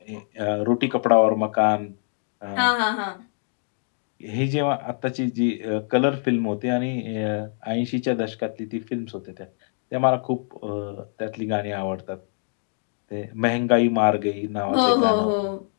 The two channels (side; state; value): right; silent; 62 dB below the other